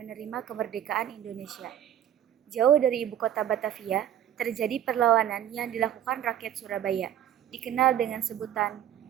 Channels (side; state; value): left; quieter; 11.0 dB